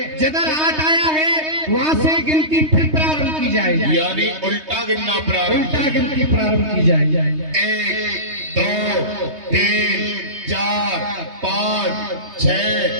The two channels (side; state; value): left; late; 3.2 ms